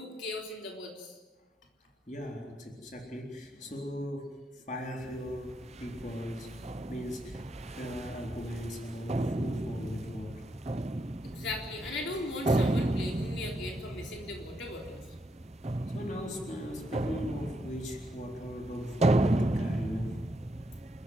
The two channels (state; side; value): normal; both; correlation 0.78